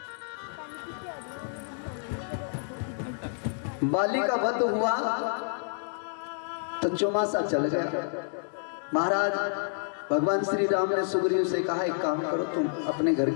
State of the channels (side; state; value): right; silent; digital silence